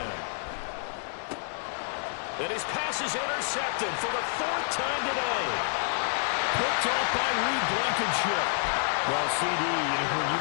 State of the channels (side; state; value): right; silent; digital silence